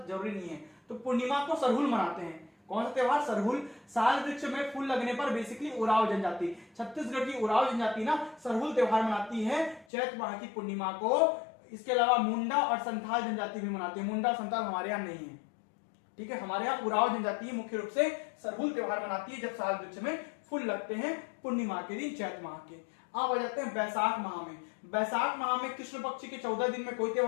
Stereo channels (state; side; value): drops out; right; at 9.9 s